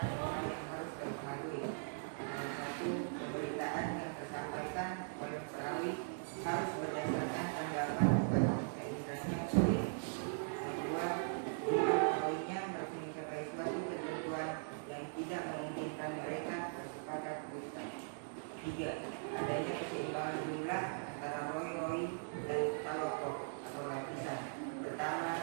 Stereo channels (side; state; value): left; silent; digital silence